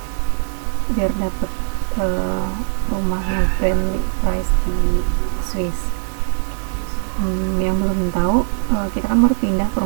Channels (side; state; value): left; silent; 66 dB below the other